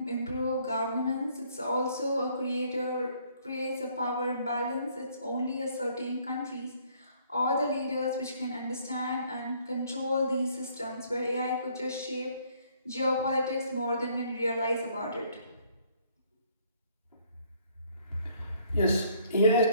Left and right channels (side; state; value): both; inverted; correlation -0.63